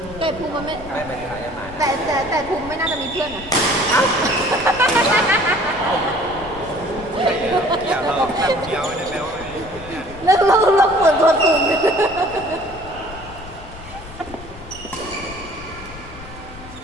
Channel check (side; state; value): left; noise; rumble, 16 dB below the sound